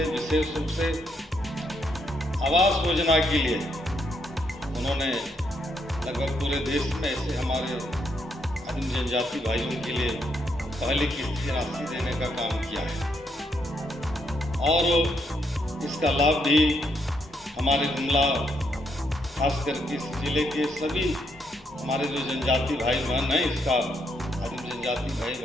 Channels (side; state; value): both; normal; correlation 0.76